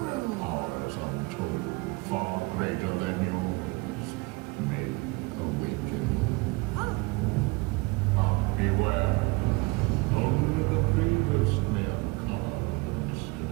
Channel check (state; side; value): quieter; left; 25.8 dB